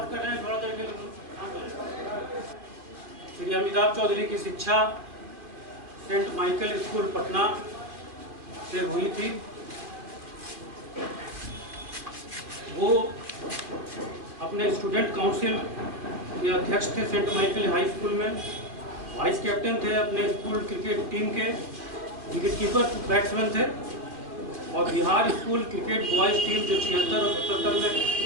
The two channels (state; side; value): late; left; 2.4 ms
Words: कर रहे हैं थोड़ा देर के। श्री अमिताभ चौधरी की शिक्षा सेंट माइकल स्कूल पटना से हुई थी। वो अपने स्टूडेंट काउंसिल के अध्यक्ष थे सेंट माइकल हाई स्कूल में। वाइस कैप्टन थे अपने स्कूल क्रिकेट टीम के। विकेटकीपर बैट्समैन थे और Bihar school cricket boys team जो 76 और 77 में